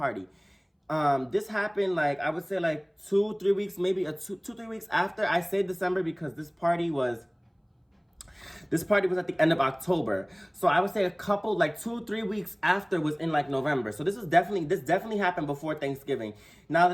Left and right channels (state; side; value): identical; both; correlation 1.00